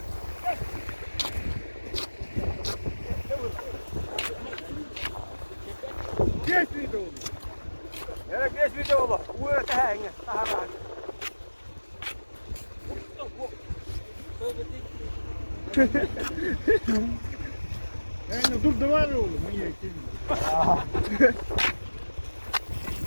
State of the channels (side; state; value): both; inverted; correlation -1.00